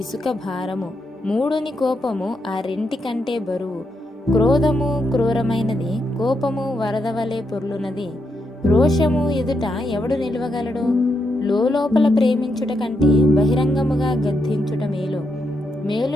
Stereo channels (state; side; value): normal; both; correlation 0.82